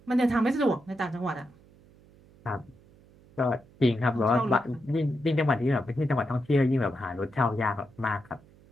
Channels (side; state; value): right; noise; hum, 27 dB below the sound